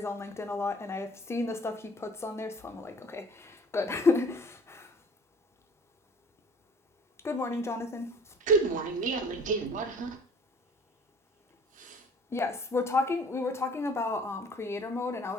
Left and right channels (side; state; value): both; normal; correlation 0.51